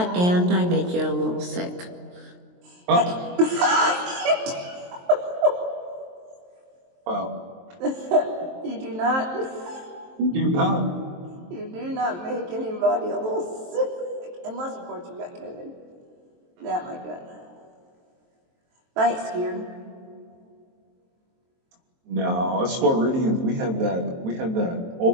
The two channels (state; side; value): late; left; 23 ms